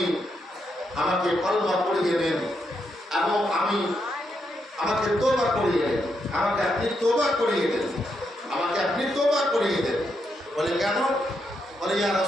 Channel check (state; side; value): normal; both; correlation 0.81